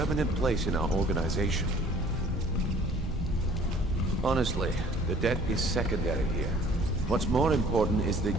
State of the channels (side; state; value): both; normal; correlation 0.54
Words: place in our organization. Honestly, the debt is secondary here. What's more important is that